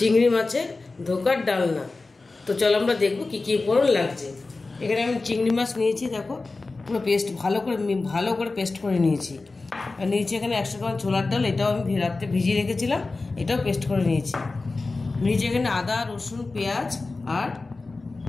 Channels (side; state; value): right; quieter; 3.6 dB